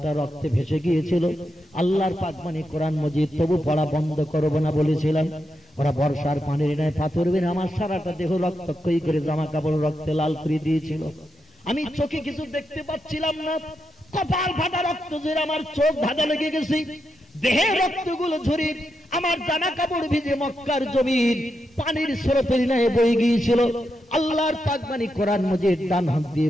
রক্তে ভেসে গিয়েছিল। আল্লাহর পাক বাণী কোরআন মজিদ তবু পড়া বন্ধ করব না বলেছিলাম। ওরা বর্ষার পানির ন্যায় পাথর বেনে আমার সারাটা দেহ রক্তক্ষয়ী করে জামা কাপড় রক্তে লাল করে দিয়েছিল। আমি চোখে কিছু দেখতে পাচ্ছিলাম না, কপাল ফাটা রক্ত ঝরে আমার চোখ ধাঁধা লেগে গেছে। দেহের রক্তগুলো ঝরে আমার জামা কাপড় ভিজে মক্কার জমির পানির স্রোতের ন্যায় বয়ে গিয়েছিল। আল্লাহর পাক বাণী কোরআন মজিদ ডান হাত দিয়ে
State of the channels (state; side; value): normal; both; correlation 0.85